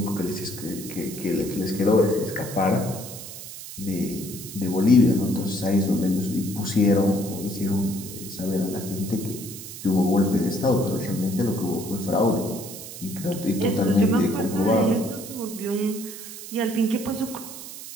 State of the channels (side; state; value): right; noise; hiss, 12 dB below the sound